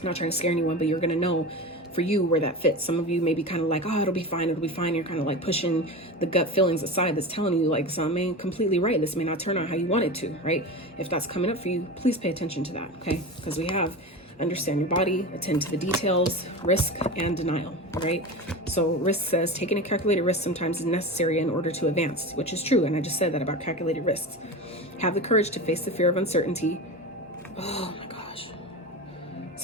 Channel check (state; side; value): normal; both; correlation 0.27